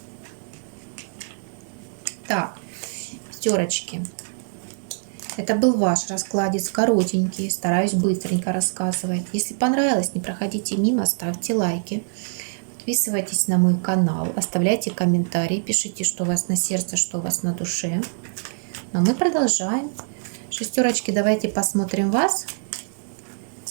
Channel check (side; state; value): left; silent; digital silence